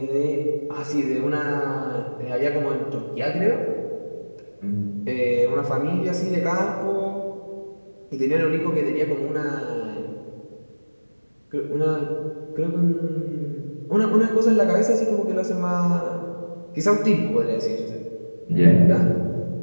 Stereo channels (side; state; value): both; inverted; correlation -1.00